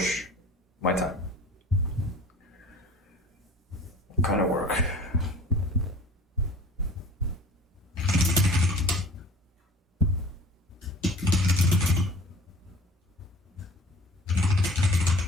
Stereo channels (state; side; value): normal; both; correlation 0.44